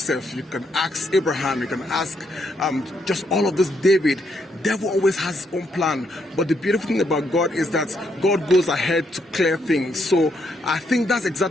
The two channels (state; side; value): normal; both; correlation 0.76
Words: you can ask Abraham, you can ask just all of this, David. Devil always has his own plan. But the beautiful thing about God is that God goes ahead to clear things. So I think that's